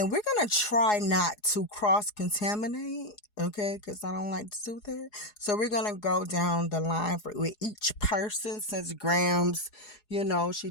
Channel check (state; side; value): late; right; 4.8 ms